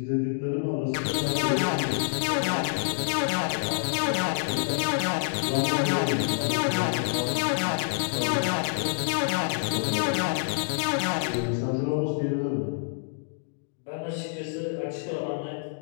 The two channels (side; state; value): right; silent; digital silence